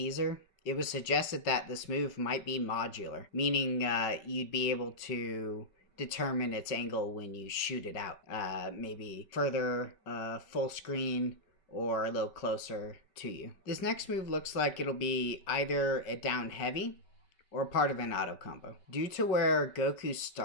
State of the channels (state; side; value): late; right; 5.3 ms